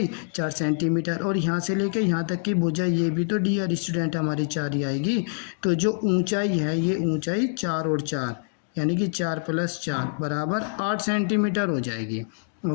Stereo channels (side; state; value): right; silent; digital silence